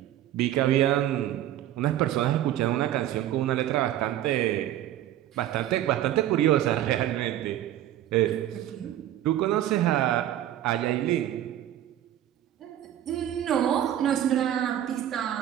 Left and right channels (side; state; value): left; quieter; 12.3 dB